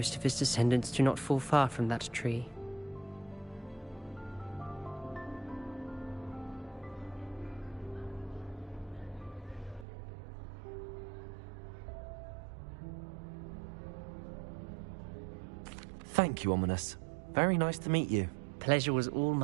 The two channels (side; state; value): left; drops out; at 9.9 s